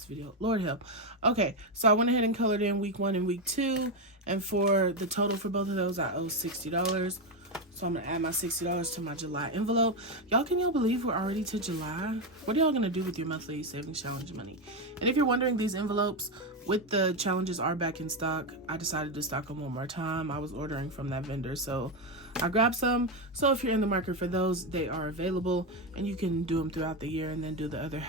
video. Lord help. Okay, so I went ahead and colored in week 1 and week 2. And for the total for both of those, I owe $60. So I'm going to add my $60 to my July envelope. Y'all, can y'all believe we're already to July? What are y'all going to do with your monthly savings challenge money? And if you're wondering, these envelopes with the challenges are back in stock. I decided to stock them one more time. I was ordering from that vendor, so I grabbed some. So if you're in the market for those, they are available. And you can do them throughout the year and then do the other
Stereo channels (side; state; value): both; normal; correlation 0.09